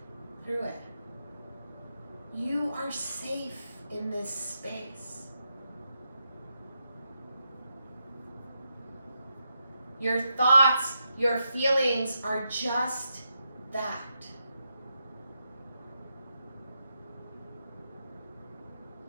through it. You are safe in this space. Your thoughts, your feelings are just that.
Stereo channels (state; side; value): inverted; both; correlation -0.84